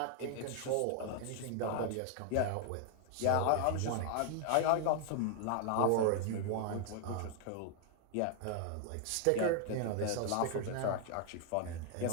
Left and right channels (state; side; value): different; both; correlation 0.00